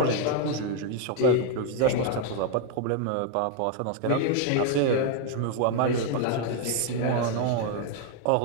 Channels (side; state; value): both; different; correlation 0.00